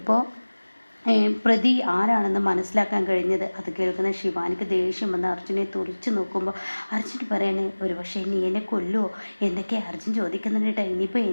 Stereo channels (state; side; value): inverted; both; correlation -1.00